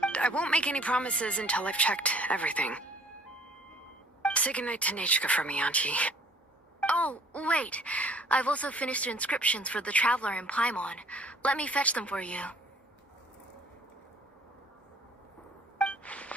I won't make any promises until I've checked everything. Say goodnight to Nechka for me, Auntie. Oh, wait. I've also finished the inscriptions for the Traveler in Paimon. Let me fetch them for you.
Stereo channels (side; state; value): both; normal; correlation 0.56